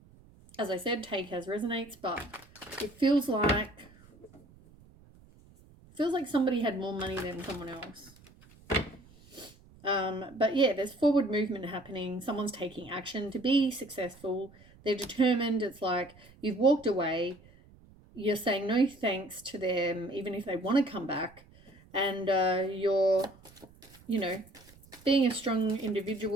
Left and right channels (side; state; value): right; noise; rumble, 25 dB below the sound